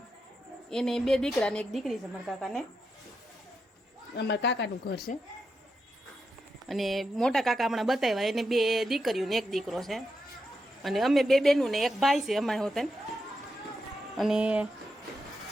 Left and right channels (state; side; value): normal; both; correlation 0.86